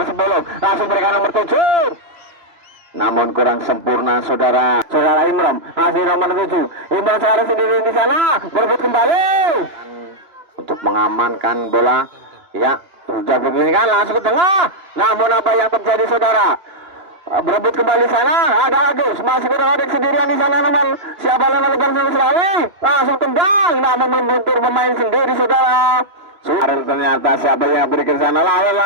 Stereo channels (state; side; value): late; left; 2.9 ms